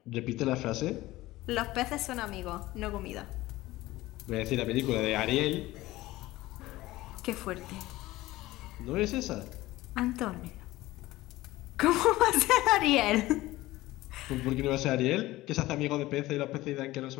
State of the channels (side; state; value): right; quieter; 17.8 dB